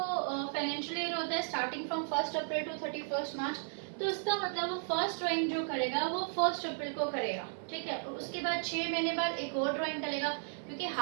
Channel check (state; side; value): silent; left; digital silence